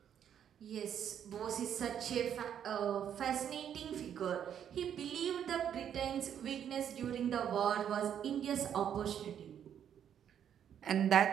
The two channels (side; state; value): left; quieter; 9.2 dB